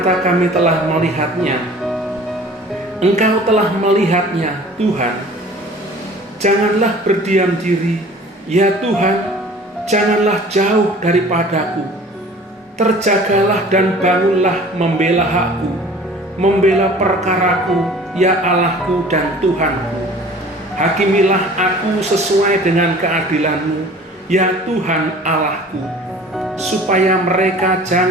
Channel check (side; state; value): both; normal; correlation 0.46